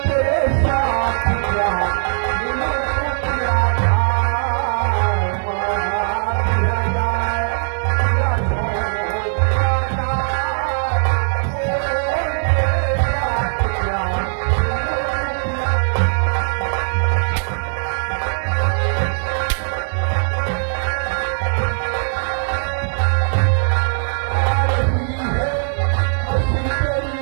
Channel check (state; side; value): silent; left; 66 dB below the other